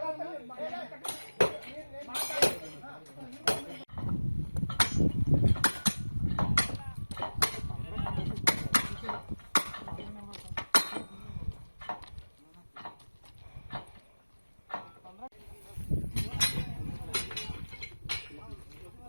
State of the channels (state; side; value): inverted; both; correlation -1.00